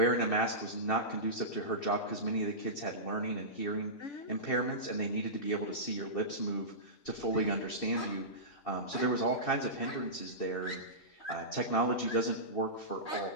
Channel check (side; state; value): right; late; 2.7 ms